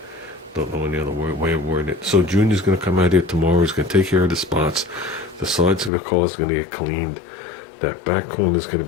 don't know any other way of wording it. So Junior's gonna come out here tomorrow. He's gonna take care of the spots. The sides of the car is gonna get cleaned. That back corner is gonna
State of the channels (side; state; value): right; drops out; at 5.9 s